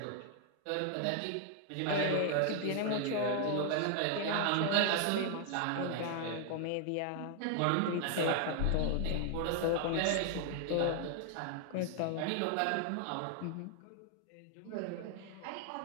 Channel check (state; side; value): different; both; correlation 0.00